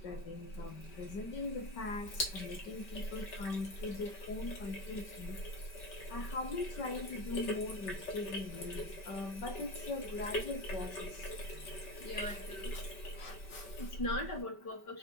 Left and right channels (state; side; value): late; right; 5.3 ms